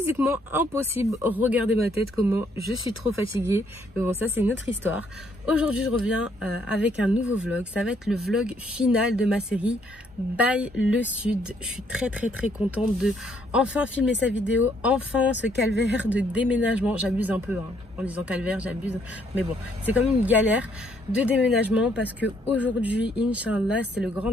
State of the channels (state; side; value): normal; both; correlation 0.69